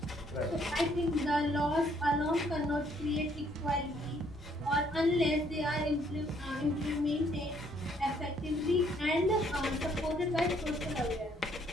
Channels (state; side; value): normal; both; correlation 0.66